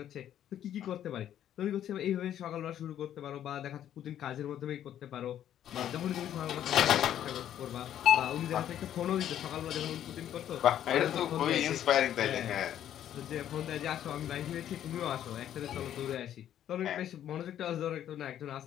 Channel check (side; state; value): right; quieter; 10.8 dB